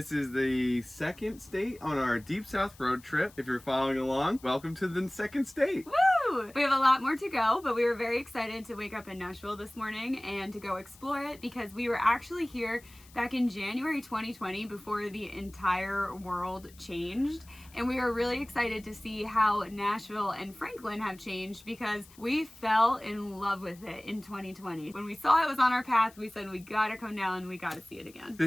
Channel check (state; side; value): noise; left; hiss, 24 dB below the sound